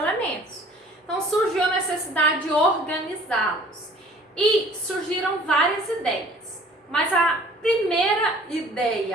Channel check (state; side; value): normal; both; correlation 0.51